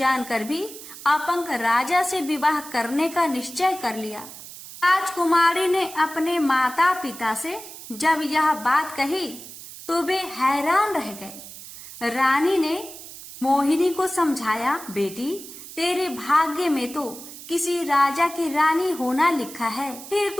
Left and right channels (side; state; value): right; noise; hiss, 14 dB below the sound